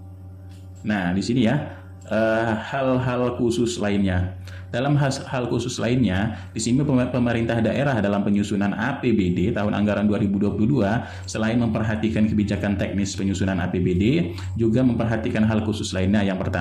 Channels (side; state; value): both; identical; correlation 1.00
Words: Nah, di sini ya hal-hal khusus lainnya. Dalam hal khusus lainnya, di sini pemerintah daerah dalam penyusunan APBD tahun anggaran 2022 selain memperhatikan kebijakan teknis penyusunan APBD, juga memperhatikan hal khusus lainnya. Yang